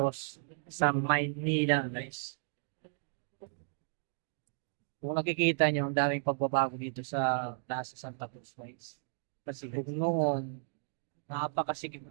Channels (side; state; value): left; silent; digital silence